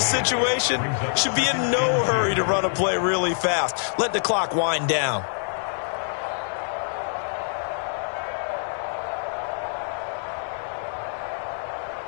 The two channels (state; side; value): silent; right; digital silence